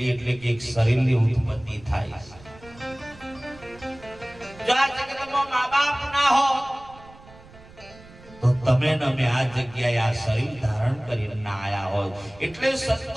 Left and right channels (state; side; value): noise; right; rumble, 22 dB below the sound